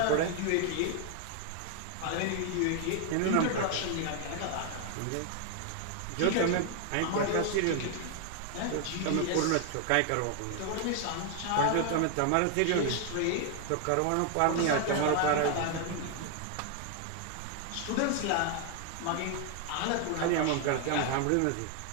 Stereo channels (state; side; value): different; both; correlation 0.00